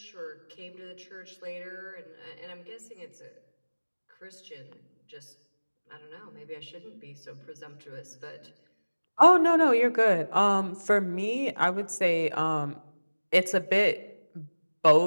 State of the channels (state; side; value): inverted; both; correlation -1.00